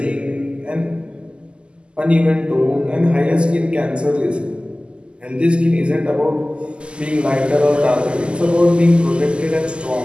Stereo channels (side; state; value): left; late; 0.051 ms